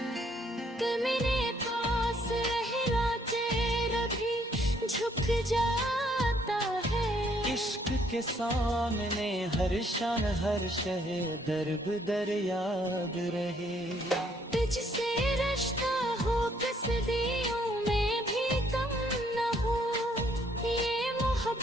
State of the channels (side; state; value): both; normal; correlation 0.67